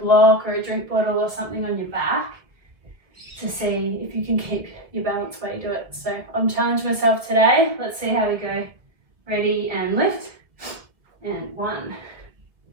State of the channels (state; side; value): late; left; 1.6 ms